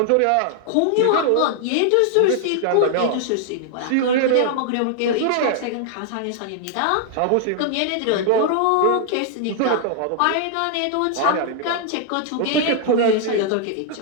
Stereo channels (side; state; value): both; different; correlation 0.00